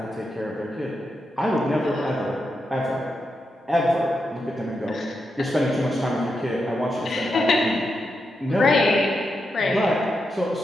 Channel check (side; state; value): both; normal; correlation 0.86